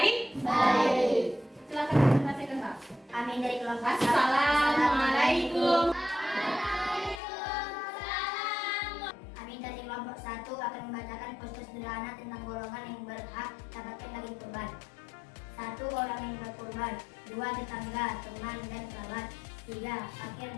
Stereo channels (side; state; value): right; drops out; at 7.2 s